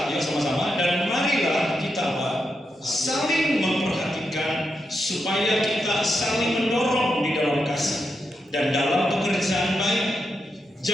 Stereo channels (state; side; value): normal; both; correlation 0.85